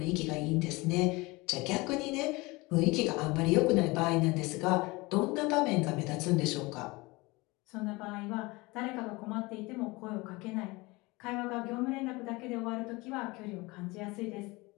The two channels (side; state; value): right; quieter; 23.5 dB